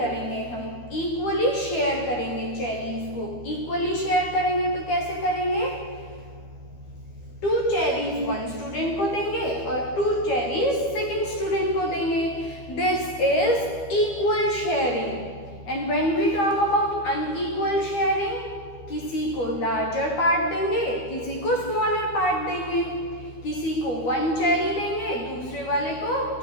हम इक्वली शेयर करेंगे चेरीज को. इक्वली शेयर करेंगे तो कैसे करेंगे? 2 चेरीज 1 स्टूडेंट को देंगे और 2 चेरीज सेकंड स्टूडेंट को देंगे. This is equal sharing. And when we talk about unequal sharing, किसी को लार्जर पार्ट देंगे, किसी को स्मॉलर पार्ट देंगे. किसी को 1 चेरी देंगे, दूसरे वाले को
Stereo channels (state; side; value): late; right; 12 ms